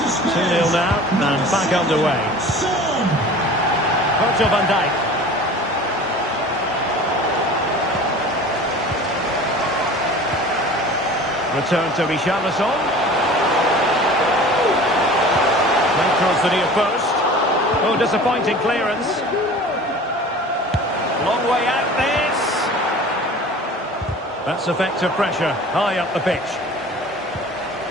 Spurs. 2-0 now, and back underway. Son. Virgil van Dijk. Return to Richarlison. Played across the near post. Oh, disappointing clearance. Long way out this. That's effective pressure high up the pitch.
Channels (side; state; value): both; normal; correlation 0.41